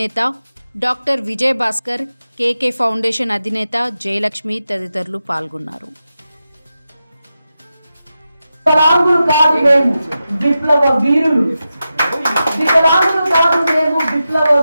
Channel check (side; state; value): both; inverted; correlation -0.91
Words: doctor Vijay Bhaskar, KK foundation అధినేత జయలక్ష్మి తదితరులు పాల్గొన్నారు. వికలాంగులు కాదు మేము విప్లవ వీరులు, వికలాంగులు కాదు మేము విప్లవ